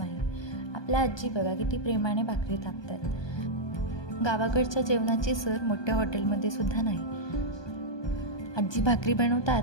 आपल्या आजी बघा किती प्रेमाने भाकरी थापतात. गावाकडच्या जेवणाची सर मोठ्या हॉटेलमध्ये सुद्धा नाही. आजी भाकरी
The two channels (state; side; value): late; right; 1.2 ms